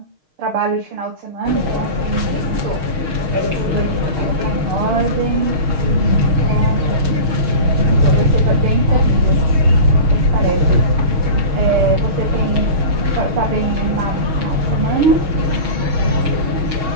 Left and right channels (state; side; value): late; left; 6.4 ms